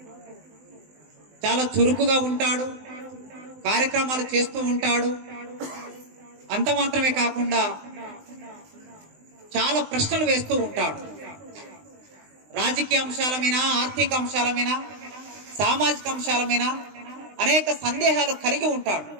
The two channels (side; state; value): left; late; 20 ms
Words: చాలా చురుకుగా ఉంటాడు, కార్యక్రమాలు చేస్తూ ఉంటాడు. అంత మాత్రమే కాకుండా చాలా ప్రశ్నలు వేస్తూ ఉంటాడు. రాజకీయ అంశాల మీద, ఆర్థిక అంశాల మీద, సామాజిక అంశాల మీద అనేక సందేహాలు కలిగి ఉంటాడు.